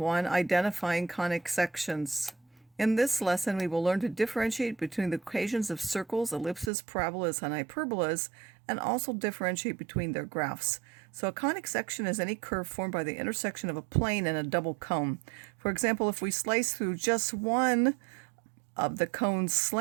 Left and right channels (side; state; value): left; drops out; at 6.7 s